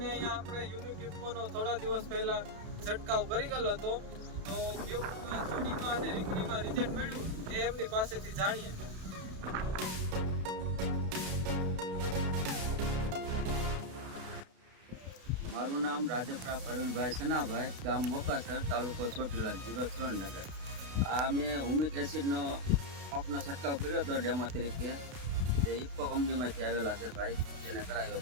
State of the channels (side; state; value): left; late; 32 ms